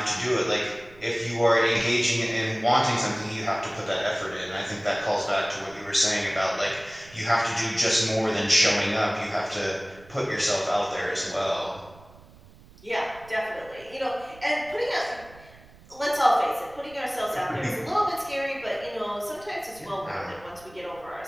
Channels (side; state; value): right; noise; rumble, 23 dB below the sound